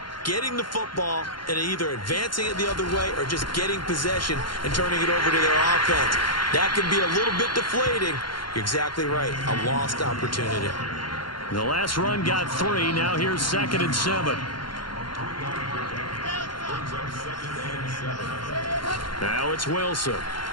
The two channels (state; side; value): late; right; 0.72 ms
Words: Getting the football and either advancing it the other way or just getting possession and turning it over to their offense. That can be a little bit deflating. You're exactly right. A lost opportunity. The last run got 3. Now here's 2nd and 7. Now it's Wilson.